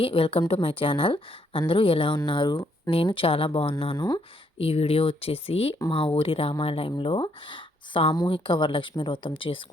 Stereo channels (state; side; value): normal; both; correlation 0.71